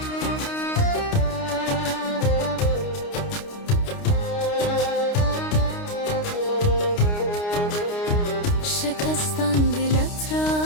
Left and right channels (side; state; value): right; late; 29 ms